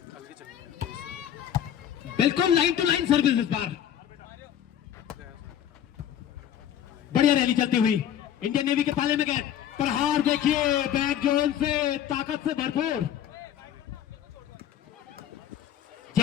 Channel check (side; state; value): right; quieter; 10.3 dB